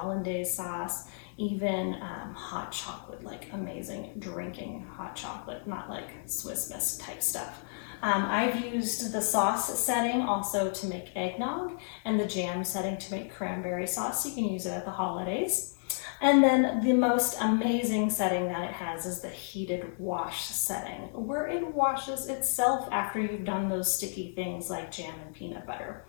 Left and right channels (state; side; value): silent; right; digital silence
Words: sauce, even hot chocolate, like amazing drinking hot chocolate, not like Swiss Miss type stuff. I've used the sauce setting also to make eggnog and the jam setting to make cranberry sauce. You can use it at the holidays. And then the most amazing setting that it has is the heated wash setting, where it washes itself after you've done those sticky things like jam and peanut butter.